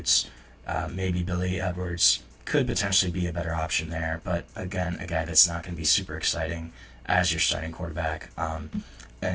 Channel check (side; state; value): both; identical; correlation 1.00